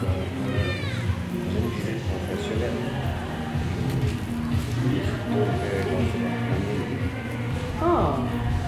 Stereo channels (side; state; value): both; identical; correlation 1.00